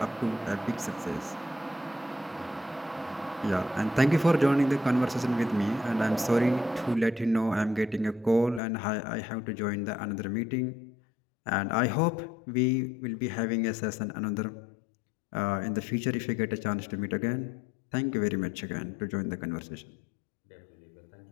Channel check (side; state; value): right; drops out; at 8.6 s